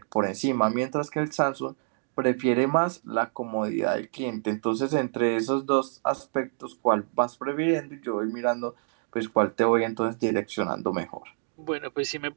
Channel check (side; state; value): left; silent; 60 dB below the other